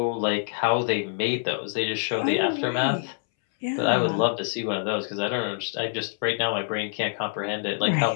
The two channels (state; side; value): silent; right; 61 dB below the other